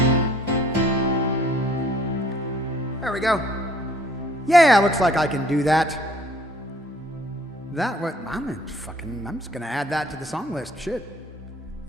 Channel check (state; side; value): normal; both; correlation 0.57